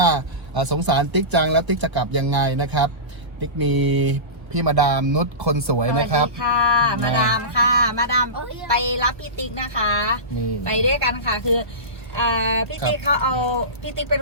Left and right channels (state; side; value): late; left; 1.3 ms